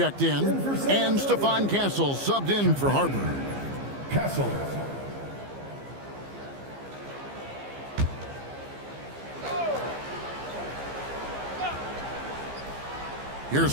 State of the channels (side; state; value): left; late; 15 ms